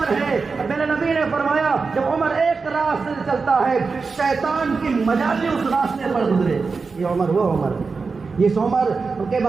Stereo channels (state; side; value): quieter; left; 4.6 dB